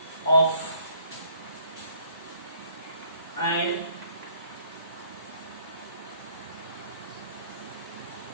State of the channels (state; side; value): inverted; both; correlation -0.62